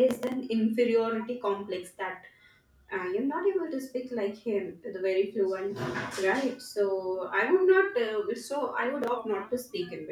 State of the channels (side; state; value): both; identical; correlation 1.00